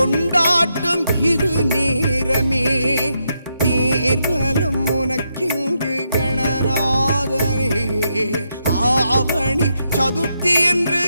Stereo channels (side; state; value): both; inverted; correlation -0.81